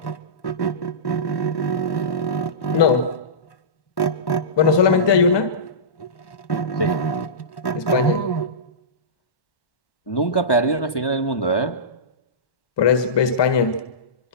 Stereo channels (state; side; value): late; right; 1.1 ms